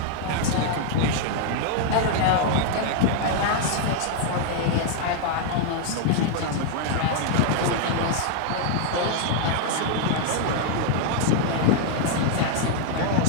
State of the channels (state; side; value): different; both; correlation 0.00